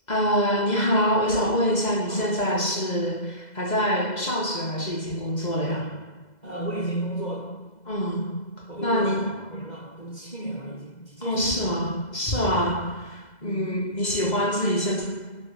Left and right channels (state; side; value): late; right; 2.0 ms